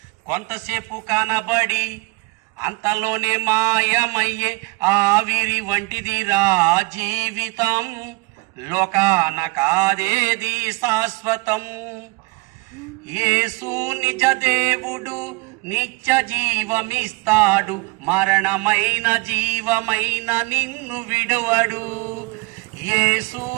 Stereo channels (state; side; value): quieter; left; 26.2 dB